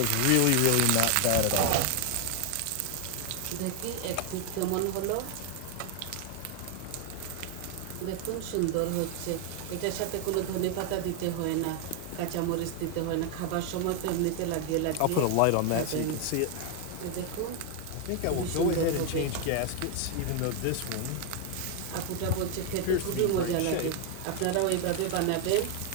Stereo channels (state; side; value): different; both; correlation 0.00